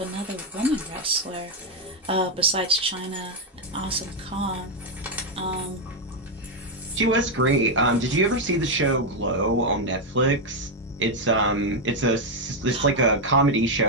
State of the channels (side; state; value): both; normal; correlation 0.03